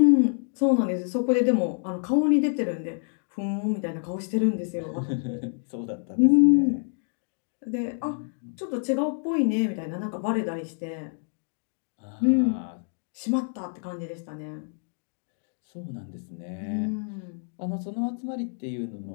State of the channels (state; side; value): silent; right; 60 dB below the other